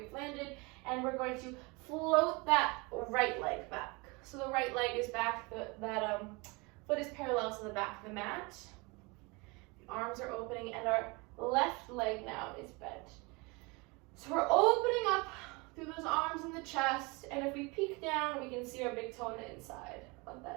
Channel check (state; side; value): quieter; left; 27.2 dB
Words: landed. And we're going to float that right leg back. So the right leg is back, that foot is parallel to the back of the mat. The arms are opening and our left leg now is bent. So we're opening up through those arms and the chest, and if we peek down, we can see our big toe on the inside of